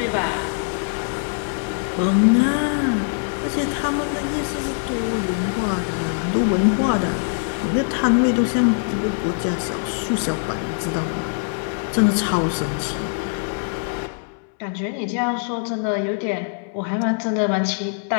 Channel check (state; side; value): silent; right; 64 dB below the other